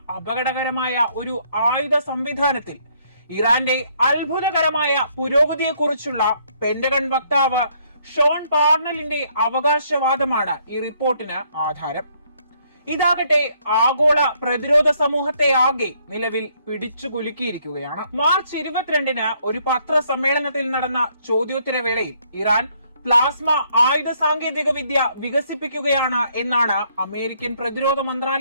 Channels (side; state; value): both; inverted; correlation -0.68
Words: അപകടകരമായ ഒരു ആയുധ സംവിധാനത്തിൽ ഇറാന്റെ അത്ഭുതകരമായ പുരോഗതിയെക്കുറിച്ചുള്ള പെന്റഗൺ വക്താവ് ഷോൺ പാർണലിന്റെ അവകാശവാദമാണ് ഈ റിപ്പോർട്ടിന് ആധാരം. ഇതാകട്ടെ ആഗോള പ്രതിരോധ സമൂഹത്തെ ആകെ നിലവിൽ പിടിച്ചു കുലുക്കിയിരിക്കുകയാണ്. മാർച്ച് 22-ന് ഒരു പത്രസമ്മേളനത്തിൽ നടന്ന ചോദ്യോത്തരവേളയിൽ ഇറാൻ പ്ലാസ്മ ആയുധ സാങ്കേതിക വിദ്യ വികസിപ്പിക്കുകയാണ് എന്നാണ് അമേരിക്കൻ പ്രതിരോധ